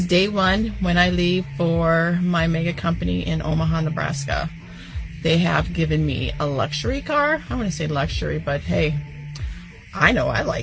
day one when I leave for my mega company in Omaha, Nebraska. They have given me a luxury car. I want to say luxury, but hey, I know I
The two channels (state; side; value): identical; both; correlation 1.00